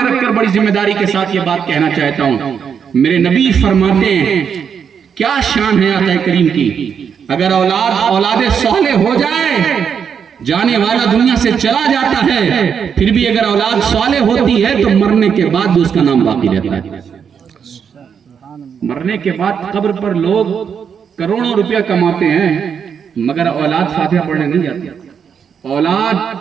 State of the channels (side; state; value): left; quieter; 7.2 dB